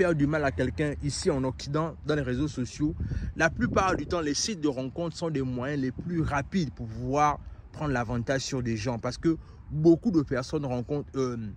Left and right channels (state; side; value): identical; both; correlation 1.00